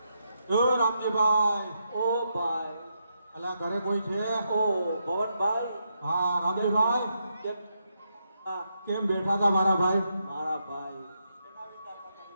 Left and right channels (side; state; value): both; inverted; correlation -0.81